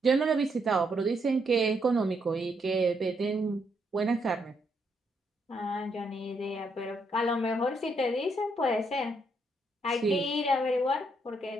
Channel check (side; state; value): both; normal; correlation 0.76